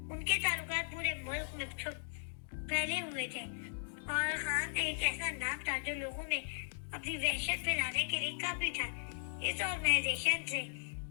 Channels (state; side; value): silent; right; digital silence